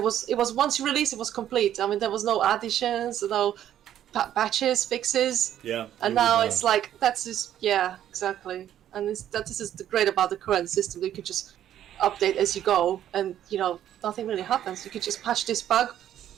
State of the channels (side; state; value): left; quieter; 11.2 dB